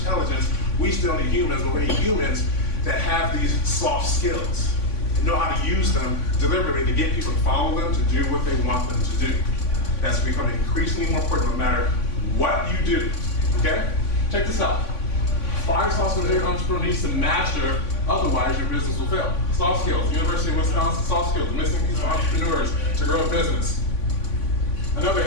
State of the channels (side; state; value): right; late; 3.5 ms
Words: We still need humans, but we need humans that have these soft skills, know how to use them deliberately to get people to follow them, to do what they want them to do. That's becoming increasingly more important no matter what you do, okay? Check this out. 5 soft skills every entrepreneur needs to master, otherwise your business will fail. Soft skills, University of Wisconsin, soft skills, the missing piece for entrepreneurs to grow a business. Another